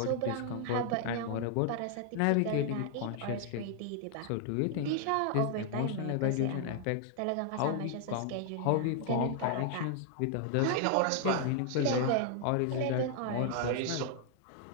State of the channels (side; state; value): both; different; correlation 0.00